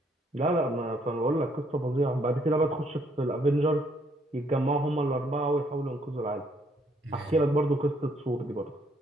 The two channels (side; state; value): both; normal; correlation 0.68